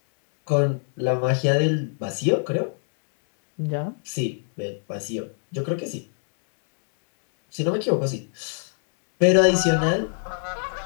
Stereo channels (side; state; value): right; silent; 63 dB below the other